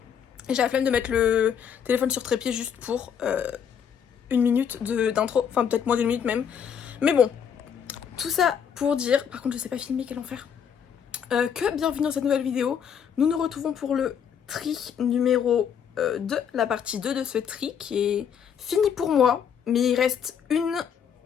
et j'ai la flemme de mettre le téléphone sur trépied juste pour une minute d'intro, enfin peut-être moins d'une minute même. Mais bon, tout ça pour dire, par contre je sais pas filmer, quel enfer, que bienvenue dans cette nouvelle vidéo. Nous nous retrouvons pour le tri numéro 2, la partie 2 de ce tri qui est fini pour moi, mais il reste une...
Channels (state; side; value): quieter; right; 7.8 dB